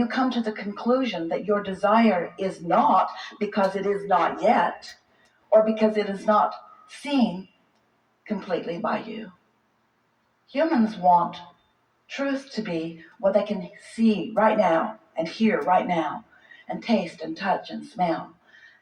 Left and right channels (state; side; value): identical; both; correlation 1.00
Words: come to the conclusion that your desire is not because it is not yet, or because it is not seen completely by you. Humans want truth to be what they can see right now, and hear right now, and taste and touch and smell.